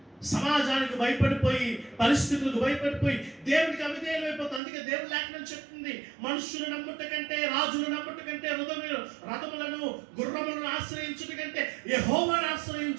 సమాజానికి భయపడిపోయి, పరిస్థితులకు భయపడిపోయి దేవునికి అవిధేయులు అయిపోతుంది. అందుకే దేవుడు లేఖనం చెప్తుంది, మనుషులు నమ్ముట కంటే, రాజులు నమ్ముట కంటే, రథములను గుర్రములను ఆశ్రయించుట కంటే యెహోవాను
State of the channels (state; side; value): drops out; left; at 4.6 s